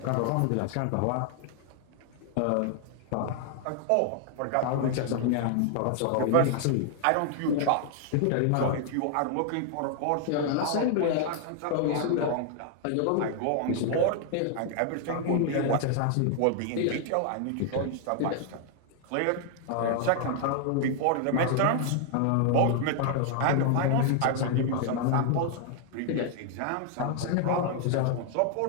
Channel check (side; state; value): both; different; correlation 0.00